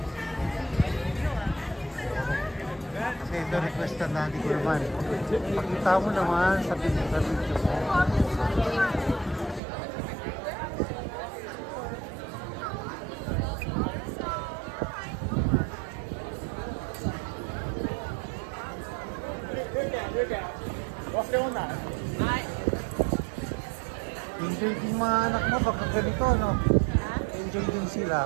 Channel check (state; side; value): drops out; left; at 9.6 s